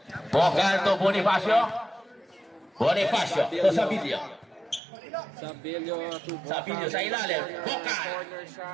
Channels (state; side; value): drops out; left; at 4.8 s